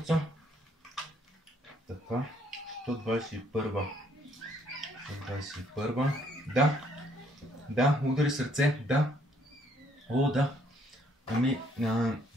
Така, 121. 121. Да, удари сърце, да. О, да. Ами,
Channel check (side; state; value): both; normal; correlation 0.66